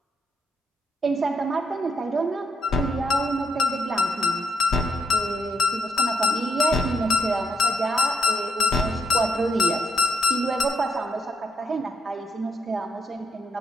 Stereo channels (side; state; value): both; normal; correlation 0.75